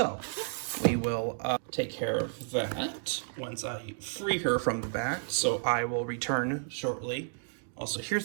we will take care of that once I free her from the back. So I will return shortly. Also,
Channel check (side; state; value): left; silent; digital silence